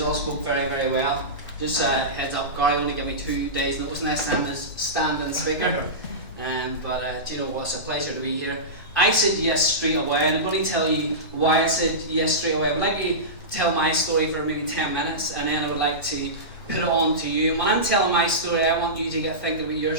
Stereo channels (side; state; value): both; normal; correlation -0.18